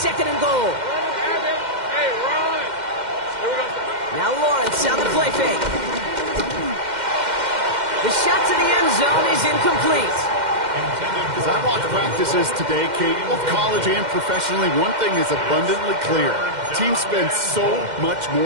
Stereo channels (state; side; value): late; left; 2.1 ms